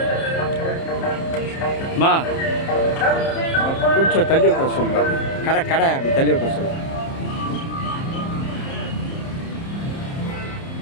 அம்மா கொஞ்சம் தள்ளி உட்கார சொல்லுங்க. கடை அப்படி தள்ளி உட்கார சொல்லுங்க.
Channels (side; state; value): right; late; 30 ms